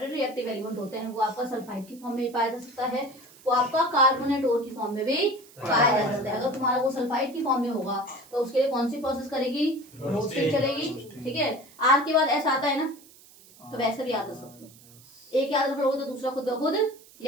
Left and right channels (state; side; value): noise; right; hiss, 24 dB below the sound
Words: रिएक्टिव एलिमेंट होते हैं वो आपका सल्फाइड की फॉर्म में भी पाया जा सकता है, वो आपका कार्बोनेट ओर की फॉर्म में भी पाया जा सकता है। अगर तुम्हारा वो सल्फाइड की फॉर्म में होगा तो उसके लिए कौन सी प्रोसेस करेगी, रोस्टिंग चलेगी। ठीक है, आर के बाद एस आता है ना, तो वैसे भी याद रख सकते हो, एक याद रखोगे तो दूसरा खुद ब खुद